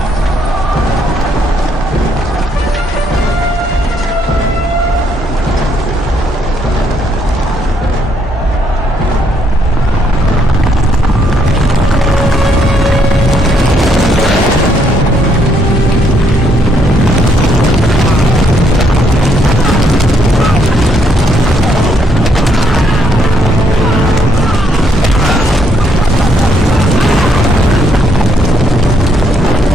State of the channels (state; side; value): normal; both; correlation 0.72